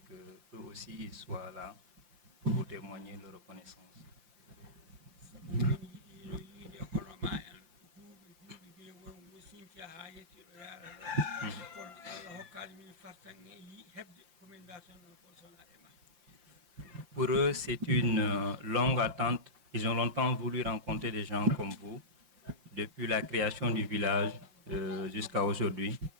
eux aussi ils soient là pour vous témoigner leur reconnaissance. Pour eux, c'est une longue attente. Ils ont longtemps voulu rencontrer des gens comme vous, depuis la création du village jusqu'à aujourd'hui,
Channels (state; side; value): late; left; 5.8 ms